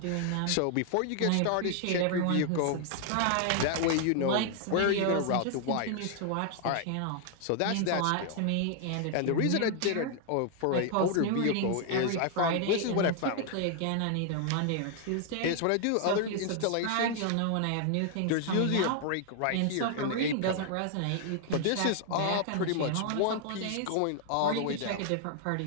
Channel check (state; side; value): different; both; correlation 0.00